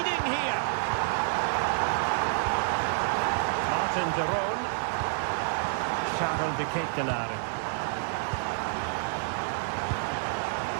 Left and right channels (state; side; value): silent; left; digital silence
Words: here. Martin de Roon. Charles de Ketelaere.